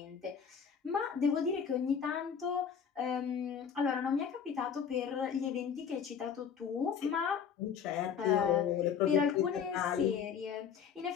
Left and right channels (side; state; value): right; quieter; 7.3 dB